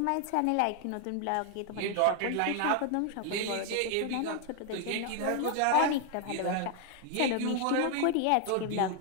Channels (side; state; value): both; different; correlation 0.01